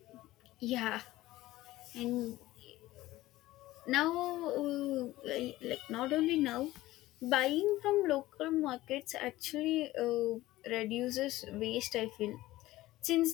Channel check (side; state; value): right; quieter; 16.9 dB